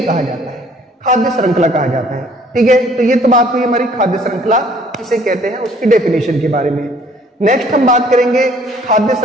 कहा जाता है, खाद्य श्रृंखला कहा जाता है। ठीक है, तो ये तो बात हुई हमारी खाद्य श्रृंखला किसे कहते हैं उसकी डेफिनेशन के बारे में। नेक्स्ट हम बात करेंगे खाद्य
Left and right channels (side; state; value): both; normal; correlation 0.58